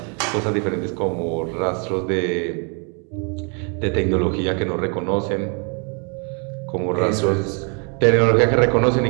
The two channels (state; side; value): quieter; left; 36.9 dB